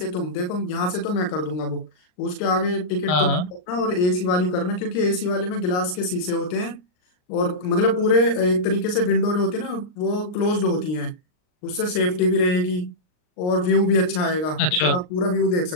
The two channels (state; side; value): late; right; 39 ms